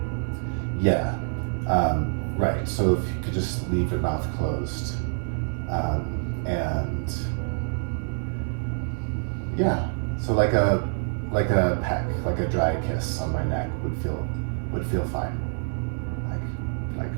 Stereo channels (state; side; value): silent; left; digital silence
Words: Yeah. Right, so if you could just leave your mouth closed. And yeah, so like a peck, like a dry kiss on my neck would feel fine. Like